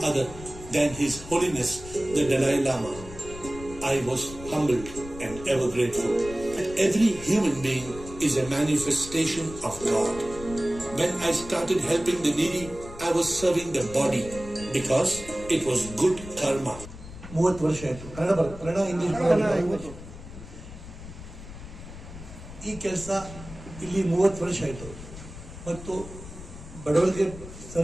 other than His Holiness the Dalai Lama. I was humbled and ever grateful. Every human being is a manifestation of God. When I started helping the needy, I was serving the body because it was good karma. 30 ವರ್ಷ ಆಯ್ತು. Kannada English ಈ ಕೆಲಸ ಇಲ್ಲಿ 30 ವರ್ಷ ಆಯ್ತು ಮತ್ತು ಬಡವರಿಗೆ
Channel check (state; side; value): noise; left; rumble, 14 dB below the sound